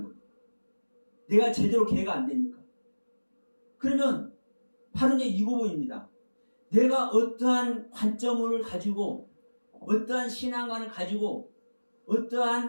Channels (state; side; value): inverted; both; correlation -1.00